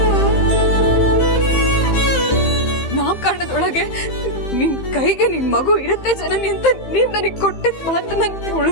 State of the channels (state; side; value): late; right; 15 ms